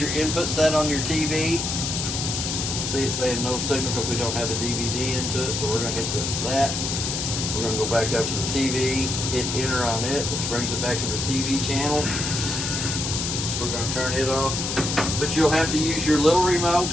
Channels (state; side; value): noise; left; hiss, 2 dB below the sound